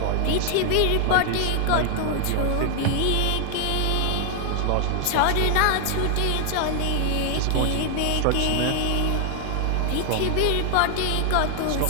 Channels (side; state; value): both; different; correlation 0.00